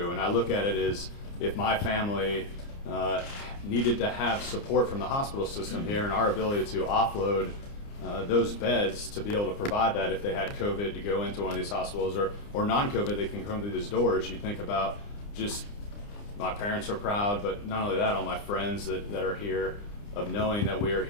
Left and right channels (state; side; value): late; right; 29 ms